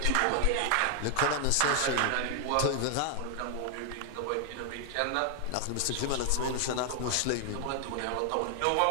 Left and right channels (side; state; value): both; different; correlation 0.00